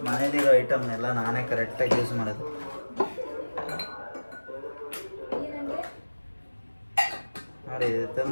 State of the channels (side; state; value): both; inverted; correlation -1.00